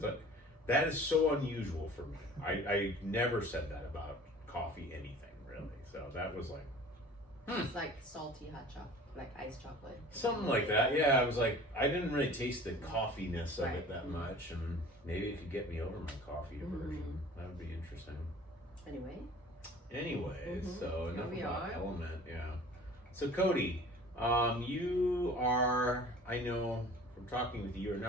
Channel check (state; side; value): normal; both; correlation 0.45